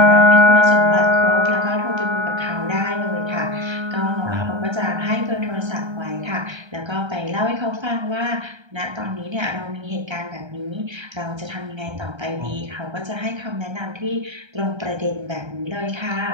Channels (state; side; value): late; left; 1.3 ms